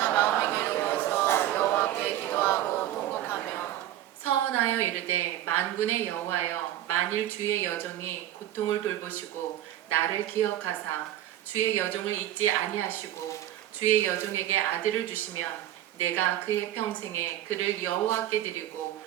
마음이 괴로워서 여호와께 기도하고 통곡하며 서원하여 이르되 만군의 여호와여, 만일 주의 여종이 고통을 돌보시고 나를 기억하사 주의 여종을 잊지 아니하시고 주의 여종에게 아들을 주시면 내가 그의 평생에 그를 여호와께 드리고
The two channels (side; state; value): left; quieter; 13.0 dB